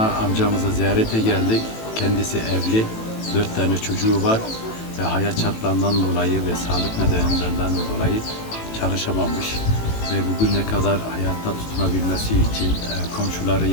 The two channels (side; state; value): right; late; 18 ms